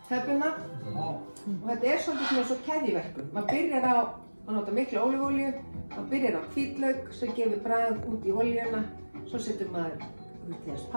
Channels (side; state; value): both; inverted; correlation -1.00